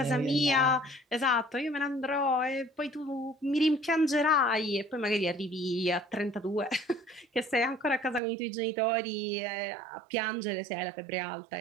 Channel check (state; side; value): drops out; left; at 8.2 s